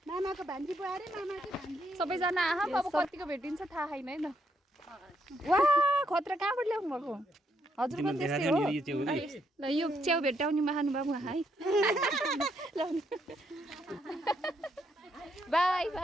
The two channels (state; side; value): normal; both; correlation 0.76